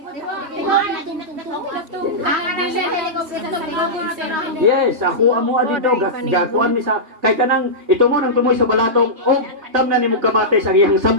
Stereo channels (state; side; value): late; left; 3.1 ms